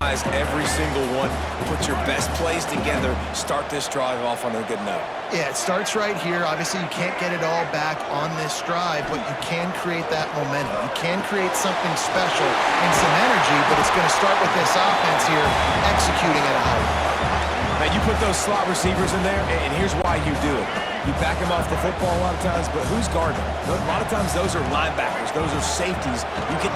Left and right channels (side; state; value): both; identical; correlation 1.00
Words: every single one. Put your best plays together. Start this drive off on a good note. Yeah, it starts right here. Obviously, you can't get it all back on this drive, but you can create that momentum. You can create something special and some energy, but it's going to start with this offense here executing at a high level. Now, you put those slot receivers in there, and here's why you do it. You back them off the football a lot of times, but who's guarding them? A lot of times those are linebackers. Those are safeties. You get